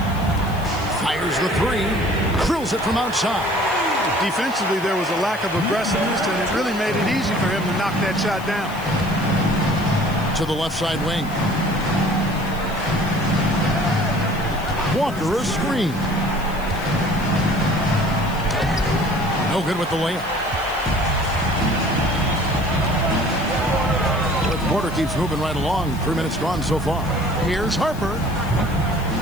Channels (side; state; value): left; noise; hiss, 19 dB below the sound